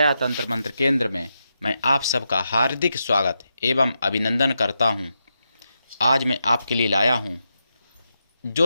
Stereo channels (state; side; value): inverted; both; correlation -0.85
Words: तंत्र मंत्र केंद्र में मैं आप सबका हार्दिक स्वागत एवं अभिनंदन करता हूं। आज मैं आपके लिए लाया हूं